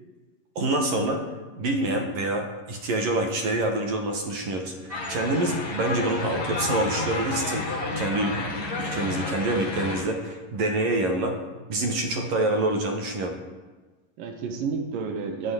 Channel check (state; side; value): late; left; 11 ms